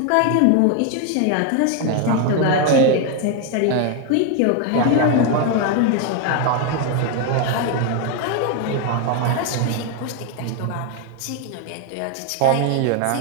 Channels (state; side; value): different; both; correlation 0.01